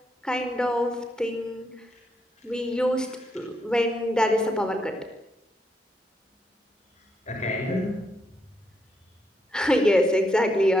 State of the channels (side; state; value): both; normal; correlation 0.79